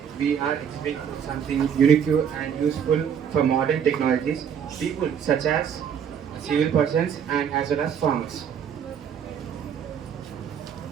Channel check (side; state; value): left; quieter; 8.0 dB